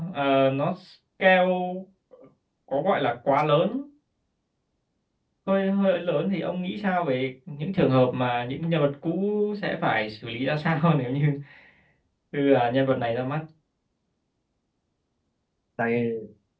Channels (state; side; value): identical; both; correlation 1.00